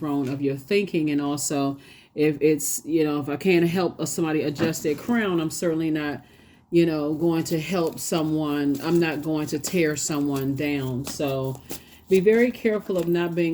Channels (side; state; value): both; identical; correlation 1.00